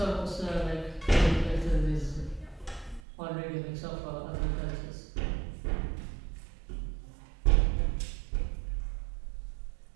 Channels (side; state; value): left; drops out; at 3.0 s